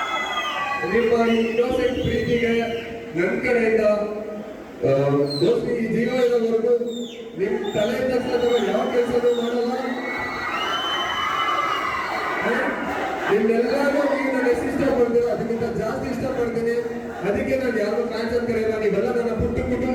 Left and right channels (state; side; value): identical; both; correlation 1.00